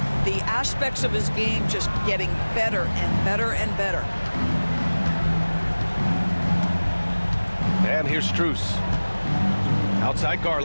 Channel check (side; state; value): both; inverted; correlation -1.00